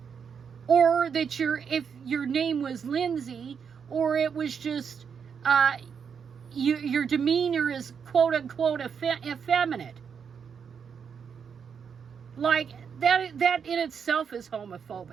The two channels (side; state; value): left; quieter; 6.8 dB